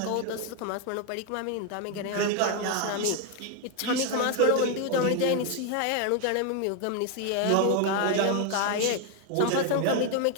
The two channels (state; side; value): different; both; correlation 0.01